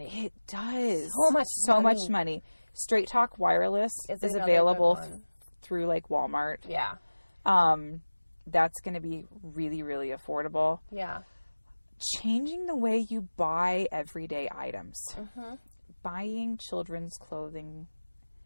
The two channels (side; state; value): both; inverted; correlation -1.00